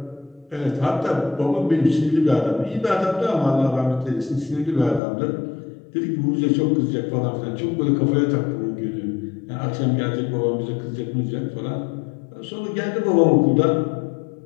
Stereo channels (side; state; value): right; drops out; at 5.0 s